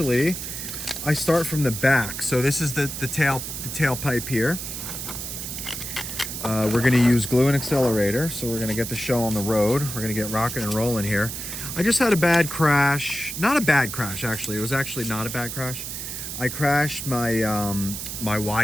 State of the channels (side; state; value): right; noise; hiss, 7 dB below the sound